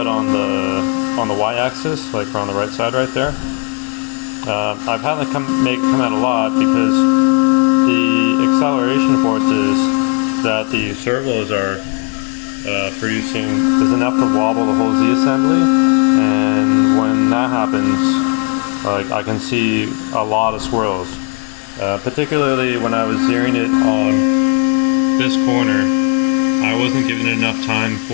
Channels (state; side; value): quieter; right; 36.1 dB